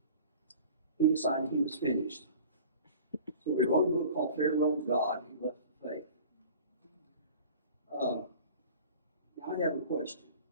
He decided he was finished. So he wrote a book called Farewell to God. He left the faith. Now I have a question.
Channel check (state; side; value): inverted; both; correlation -0.43